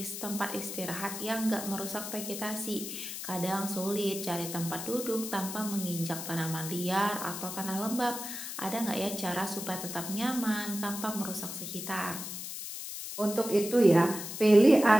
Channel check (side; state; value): left; noise; hiss, 7 dB below the sound